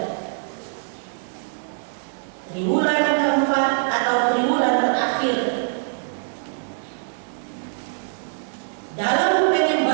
Triwulan keempat atau triwulan terakhir dalam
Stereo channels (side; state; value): left; silent; digital silence